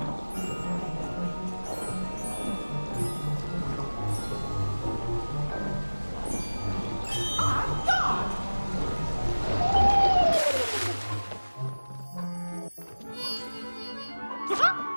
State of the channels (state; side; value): inverted; both; correlation -1.00